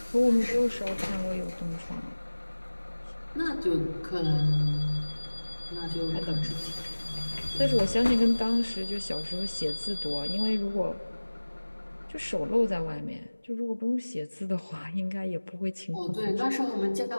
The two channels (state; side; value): inverted; both; correlation -1.00